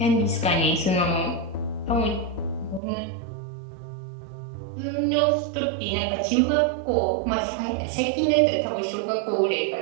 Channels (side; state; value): left; drops out; at 2.8 s